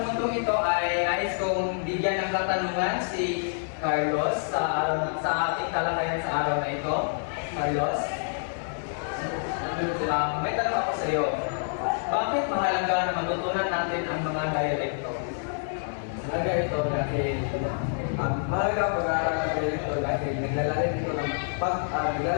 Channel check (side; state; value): right; silent; digital silence